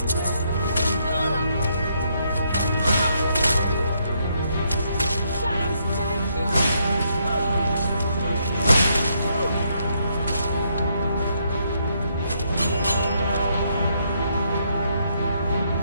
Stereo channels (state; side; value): inverted; both; correlation -0.75